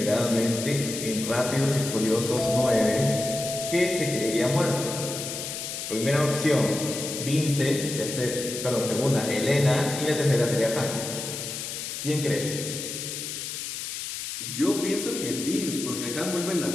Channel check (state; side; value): noise; left; hiss, 6 dB below the sound